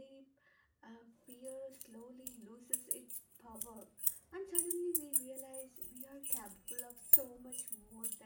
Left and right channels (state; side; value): identical; both; correlation 1.00